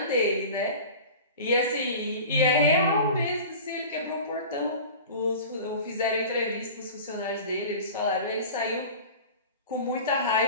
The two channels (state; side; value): inverted; both; correlation -0.37